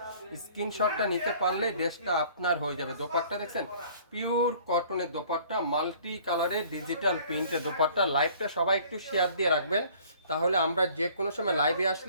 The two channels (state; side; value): inverted; both; correlation -0.54